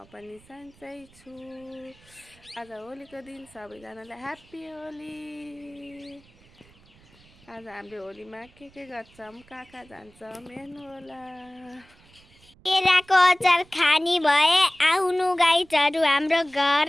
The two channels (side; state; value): right; noise; rumble, 28 dB below the sound